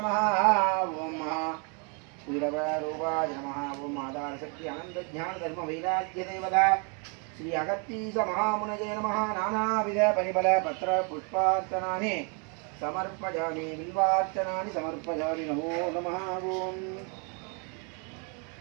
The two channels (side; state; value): left; quieter; 36.4 dB